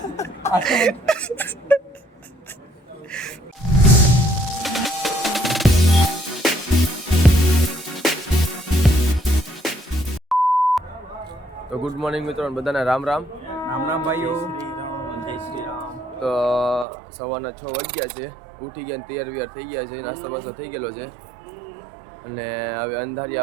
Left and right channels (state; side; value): drops out; left; at 16.9 s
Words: તો ગુડ મોર્નિંગ મિત્રો, બધાને રામ રામ. રામ રામ ભાઈઓ. તો સવારના 6 વાગ્યા છે. ઉઠી ગયા, તૈયાર વિયાર થઈ ગયા છે, નાસ્તો બાસ્તો થઈ ગયેલો છે. અને હવે અંધારી